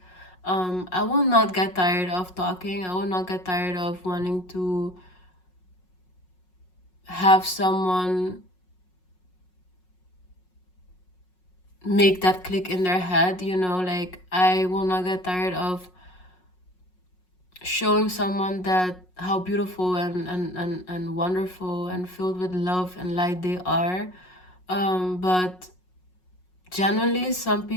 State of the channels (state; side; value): late; right; 5.5 ms